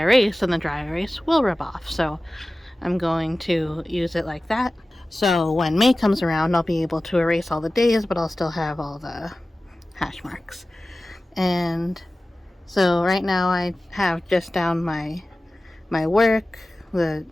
and the dry erase will rub off. So I'm going to use it like that. So when May comes around, I'll be able to erase all the days, but I'll still have all the hash marks. And so right now I have just down my work, the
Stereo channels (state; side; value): normal; both; correlation 0.96